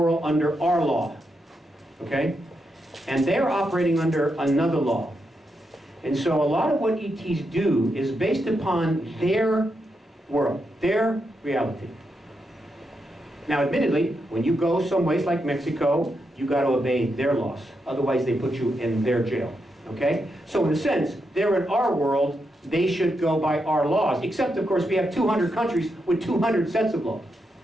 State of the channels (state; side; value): normal; both; correlation 0.84